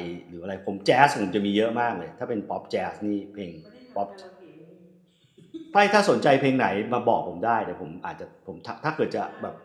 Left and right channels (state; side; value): identical; both; correlation 1.00